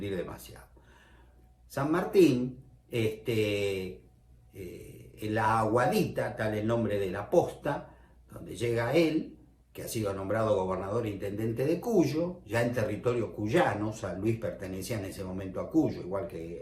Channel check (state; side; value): identical; both; correlation 1.00